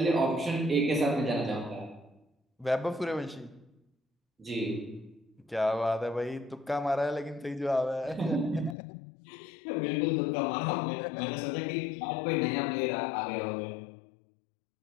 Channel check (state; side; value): drops out; right; at 8.8 s